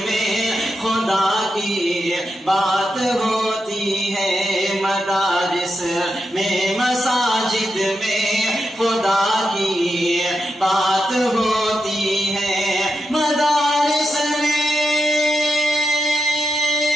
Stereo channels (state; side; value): normal; both; correlation 0.86